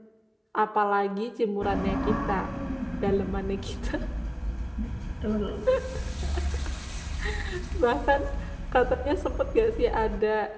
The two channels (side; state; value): both; identical; correlation 1.00